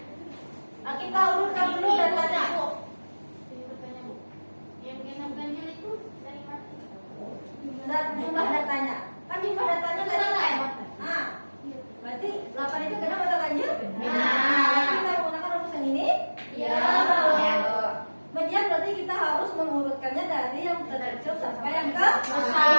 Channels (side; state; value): both; inverted; correlation -1.00